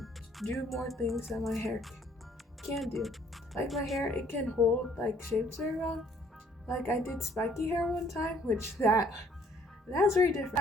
do more things that my hair can do. Like my hair, it can hold like shapes very well. Like I did spiky hair one time, which that's very different.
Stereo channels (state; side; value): normal; both; correlation 0.61